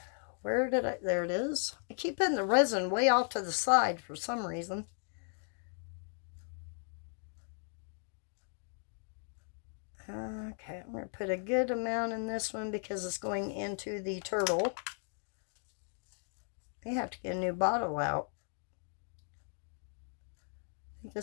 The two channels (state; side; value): silent; right; 54 dB below the other